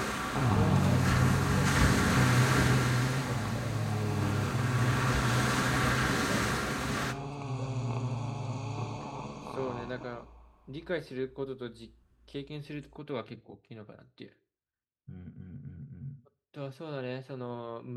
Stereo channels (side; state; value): both; identical; correlation 1.00